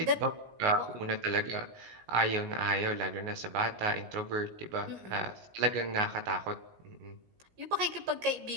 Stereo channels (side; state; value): left; late; 17 ms